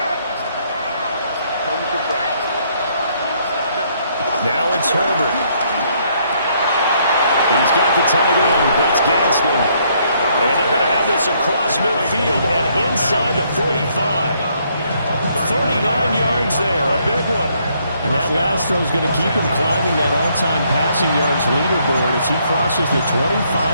Now it's Herbert. He's got the tight end. That's Gadsden. And they're going to have this across midfield and inside the 45. 39 yards there, a big one. And that last throw is going to keep him climbing that all-time passing yards leaderboard as he crosses the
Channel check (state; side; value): inverted; both; correlation -0.69